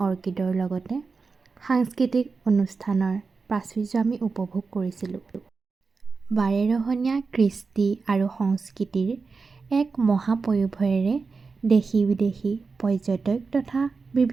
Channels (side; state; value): left; quieter; 4.6 dB